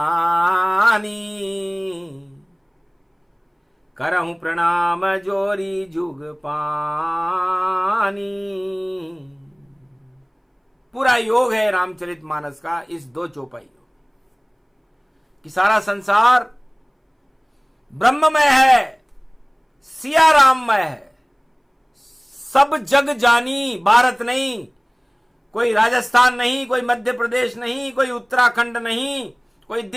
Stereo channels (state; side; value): identical; both; correlation 1.00